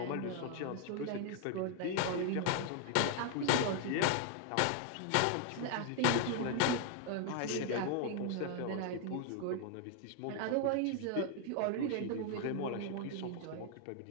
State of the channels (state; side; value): different; both; correlation 0.00